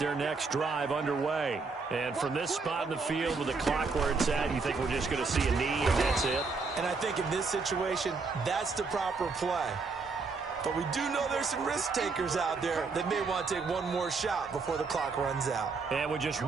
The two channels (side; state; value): left; quieter; 4.4 dB